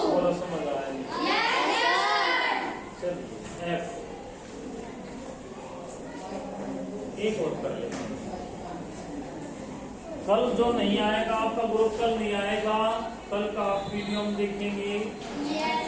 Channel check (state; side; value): identical; both; correlation 1.00